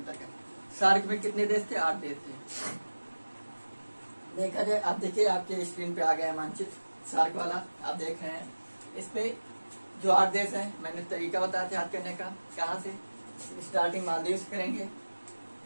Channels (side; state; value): both; inverted; correlation -1.00